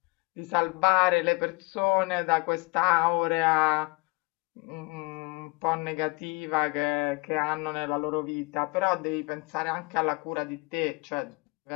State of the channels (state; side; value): quieter; right; 27.4 dB